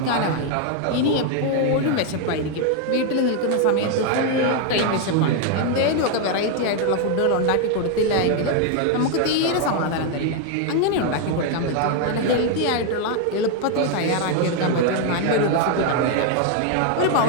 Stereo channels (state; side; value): different; both; correlation 0.01